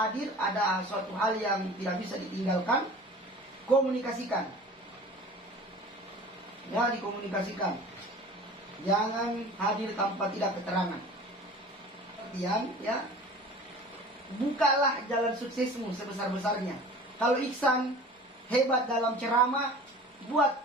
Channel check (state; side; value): normal; both; correlation 0.42